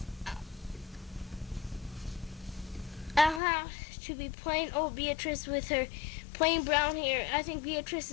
"I'll have to be plain old Beatrice with her plain brown hair." "I think Beatrice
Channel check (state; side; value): drops out; right; at 3.4 s